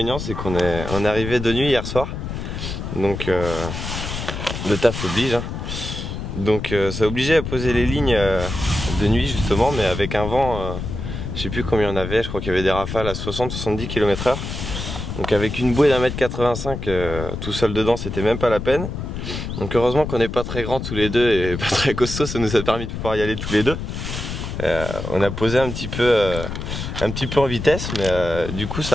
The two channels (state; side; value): noise; left; rumble, 6 dB below the sound